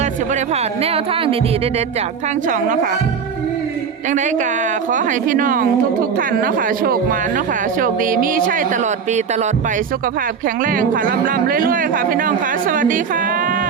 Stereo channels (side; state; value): left; quieter; 6.5 dB